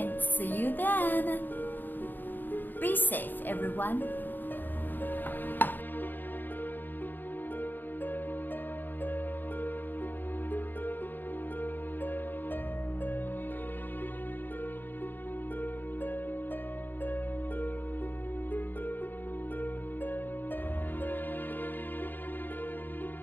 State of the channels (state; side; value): late; right; 0.090 ms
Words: see you then. Be safe, everyone.